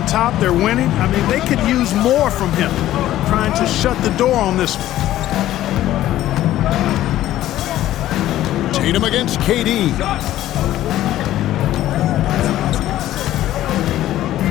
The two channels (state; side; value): quieter; right; 13.8 dB